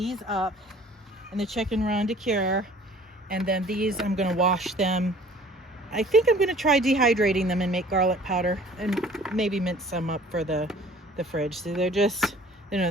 up in the chicken run to cure, and then these I'm gonna wash them. I think I'm gonna try dehydrating them and make garlic powder, and maybe mince some up for the fridge. So they're just, you know,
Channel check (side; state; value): both; normal; correlation 0.51